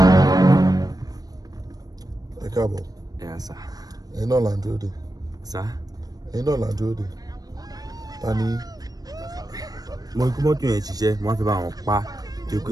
Ẹ káàbọ̀. Yes, sir. Ẹ̀yin náà là ń dúró dè. Sir? Ẹ̀yin náà là ń dúró dè. Ta ni? Mo rí mọ́tò yẹn ṣiṣẹ́, wọ́n fi bá wọn pa. Tí pé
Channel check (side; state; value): left; late; 0.18 ms